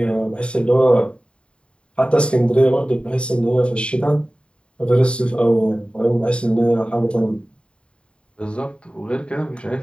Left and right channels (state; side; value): late; right; 0.055 ms